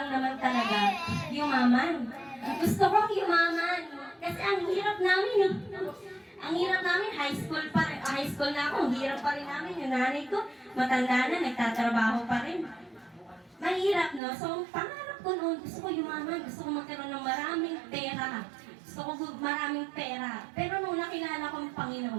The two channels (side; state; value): left; drops out; at 14.2 s